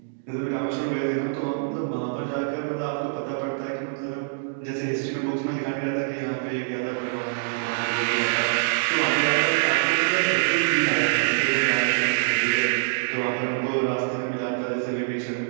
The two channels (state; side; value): silent; left; digital silence